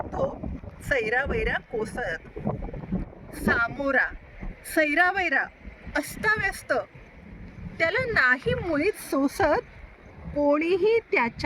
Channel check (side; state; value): both; identical; correlation 1.00